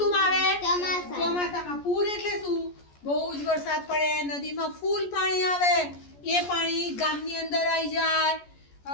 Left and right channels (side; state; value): right; late; 14 ms